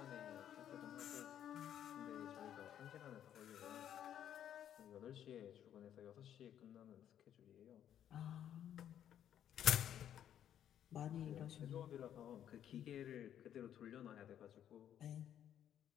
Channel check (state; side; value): quieter; right; 10.2 dB